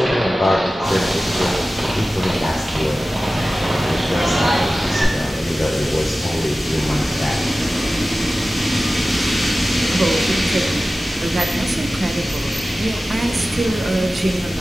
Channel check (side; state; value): both; normal; correlation 0.96